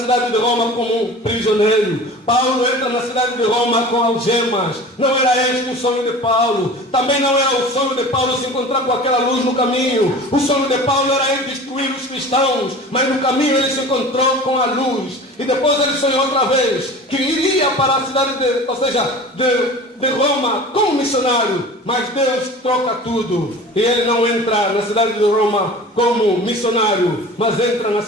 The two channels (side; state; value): both; normal; correlation 0.39